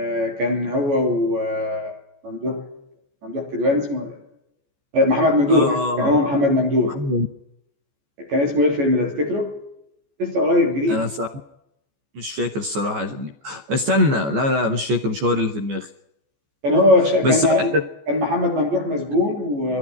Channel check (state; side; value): late; left; 14 ms